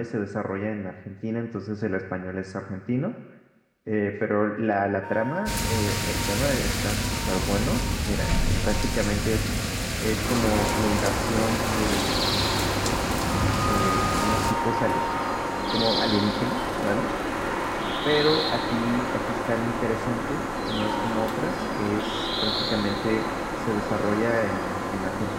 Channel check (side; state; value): both; identical; correlation 1.00